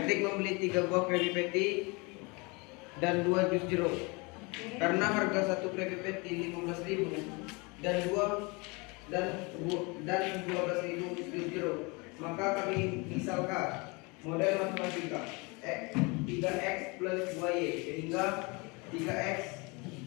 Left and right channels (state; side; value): quieter; right; 28.1 dB